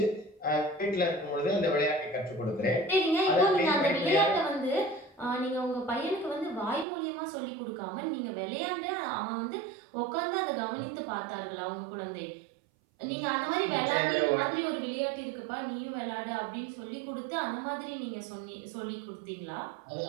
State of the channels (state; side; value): drops out; left; at 6.9 s